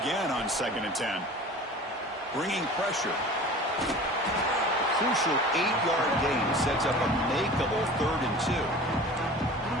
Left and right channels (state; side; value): normal; both; correlation 0.40